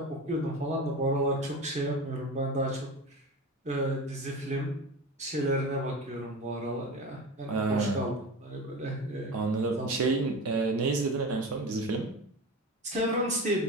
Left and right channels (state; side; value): normal; both; correlation 0.29